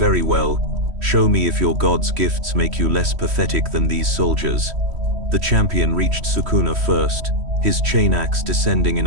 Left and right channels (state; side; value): late; left; 3.1 ms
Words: well. Show me if your god's gifts make you less pathetic than these soldiers." The champion reached Sukuna first, his chain axe descending in